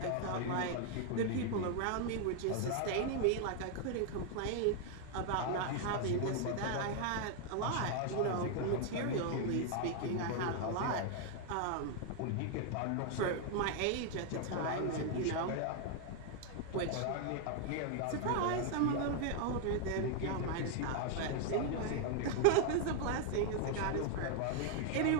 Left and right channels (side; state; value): both; different; correlation 0.00